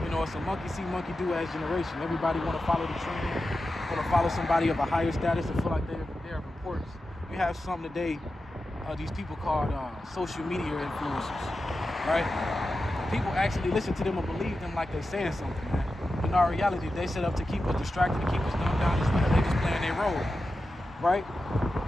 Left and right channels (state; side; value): normal; both; correlation 0.91